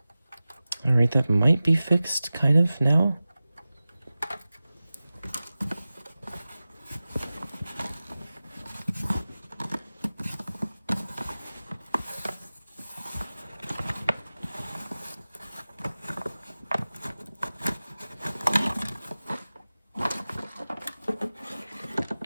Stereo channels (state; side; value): inverted; both; correlation -0.96